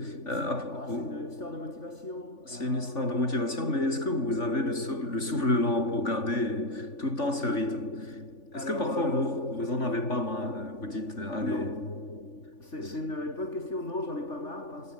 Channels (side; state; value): right; late; 3.5 ms